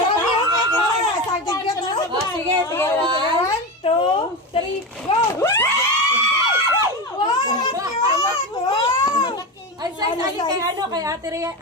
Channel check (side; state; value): both; normal; correlation 0.20